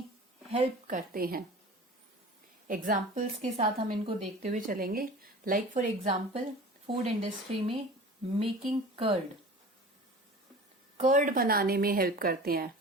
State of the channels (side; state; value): both; normal; correlation 0.39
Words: हेल्प करते हैं. एग्जाम्पल्स के साथ हम इनको देखते हुए चलेंगे. Like for example, food industry में मेकिंग कर्ड बनाने में हेल्प करते हैं.